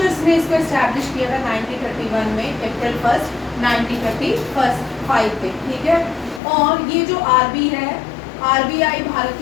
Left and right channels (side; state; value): right; drops out; at 6.4 s